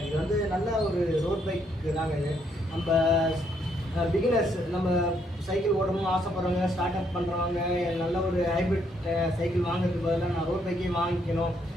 இது வந்து நல்ல ஒரு ரோட் பைக்கு தாங்க. இது நம்ம பிகினர்ஸ், நம்ம சைக்கிள் ஓடணும்னு ஆசைப்படுறவங்க, ஸ்டார்ட் அப் பண்ணுறவங்க, நல்ல ஒரு ஹைப்ரிட் சைக்கிள் வாங்குறதுக்கு பதிலாக நான் ரோட் பைக்கே வாங்கிக்கணும்,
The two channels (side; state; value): both; normal; correlation 0.72